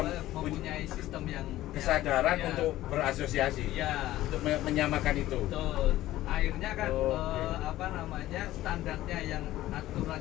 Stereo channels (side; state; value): right; quieter; 15.2 dB